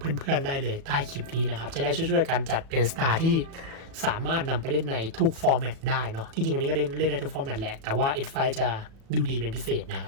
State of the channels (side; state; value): left; late; 36 ms